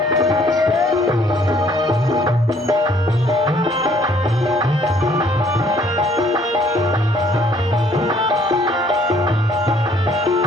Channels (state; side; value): normal; both; correlation 0.61